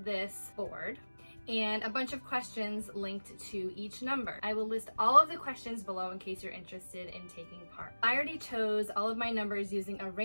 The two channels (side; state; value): both; inverted; correlation -1.00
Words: this board and a bunch of questions linked to each number. I will list all of the questions below in case you're interested in taking part. I already chose all of my numbers using a